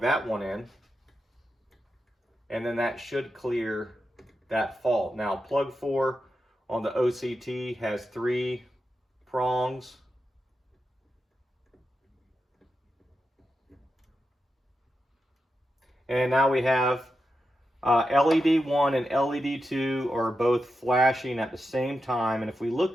that one in, and then that should clear that fault. Now plug 4 on the OCT has 3 prongs. And now we have LED 1 and LED 2 are both flashing at the same time. And if we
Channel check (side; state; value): both; normal; correlation 0.89